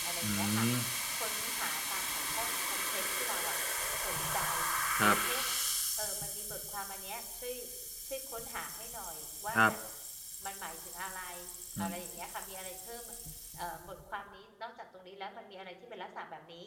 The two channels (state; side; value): identical; both; correlation 1.00